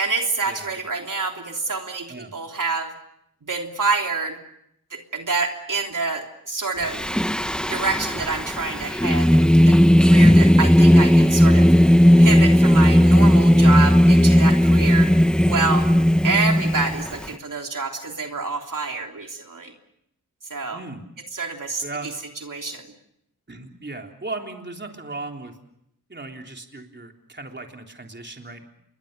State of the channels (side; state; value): both; normal; correlation 0.87